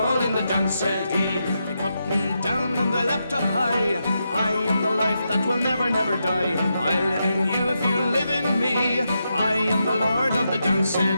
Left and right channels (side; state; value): both; inverted; correlation -0.85